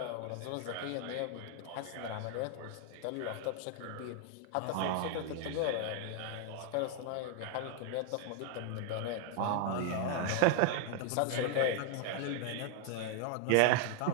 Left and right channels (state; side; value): different; both; correlation 0.00